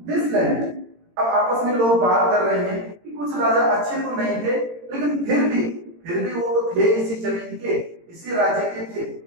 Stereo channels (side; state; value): left; late; 18 ms